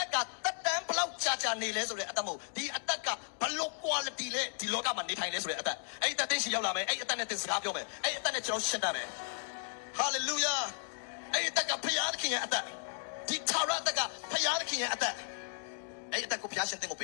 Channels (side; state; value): right; silent; digital silence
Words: က်ကတက်တန်းဘလောက်ကြာနေလဲဆိုတဲ့အသက်မဟုတ်ဒီအသက်ကဘလို့ quality လဲဒီလောကမှာနေထိုင်လဲဆိုတဲ့အသက်အဲ့အသက်သိရှိရောက်လာမယ်အဲ့အသက်နဲ့တင်စကားပြောမယ်အဲ့အသက်နဲ့ကျွန်တော်ရှင်းတတ်မယ်Hallelujah. အဲ့အသက်ကဖျားသခင်ရဲ့အသက်ဒီထာဝရအသက်ကဖျားသခင်ရဲ့အသက်အဲ့အသက်ကိုဖျားရှင်တင်ကိုပ